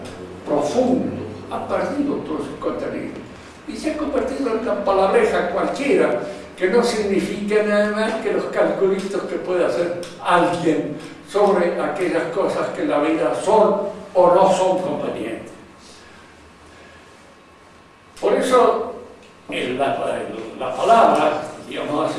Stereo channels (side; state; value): both; identical; correlation 1.00